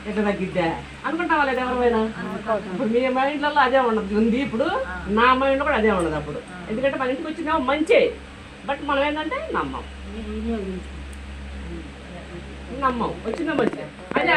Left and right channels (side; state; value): both; identical; correlation 1.00